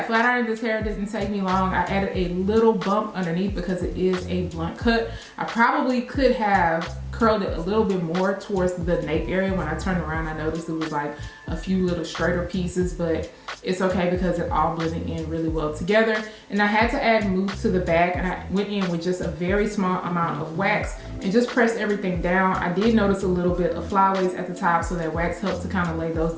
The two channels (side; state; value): both; identical; correlation 1.00